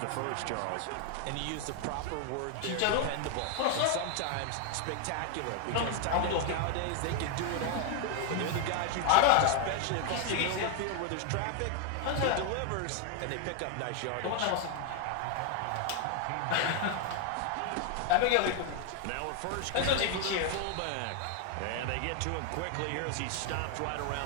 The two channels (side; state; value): both; different; correlation 0.01